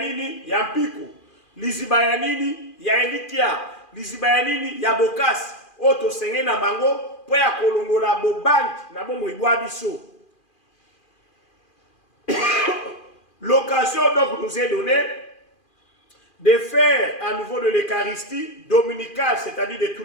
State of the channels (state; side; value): late; right; 2.4 ms